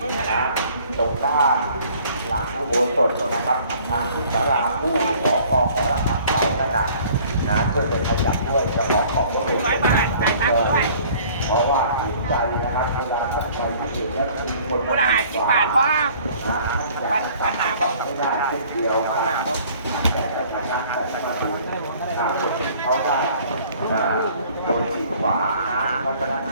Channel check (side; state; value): both; inverted; correlation -0.54